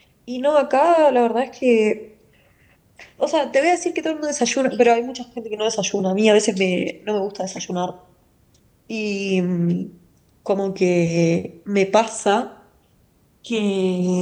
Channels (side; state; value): both; identical; correlation 1.00